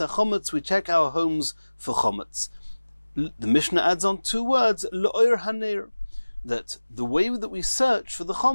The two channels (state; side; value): inverted; both; correlation -1.00